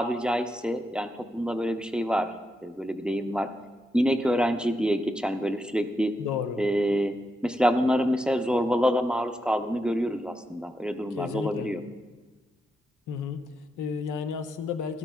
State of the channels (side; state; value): both; normal; correlation 0.84